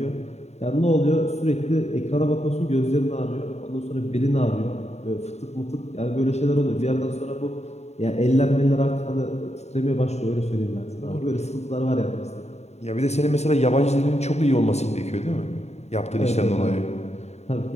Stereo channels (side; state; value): right; late; 0.32 ms